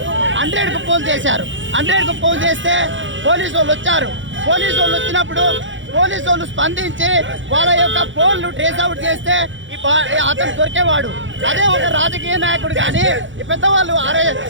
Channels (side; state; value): left; late; 0.55 ms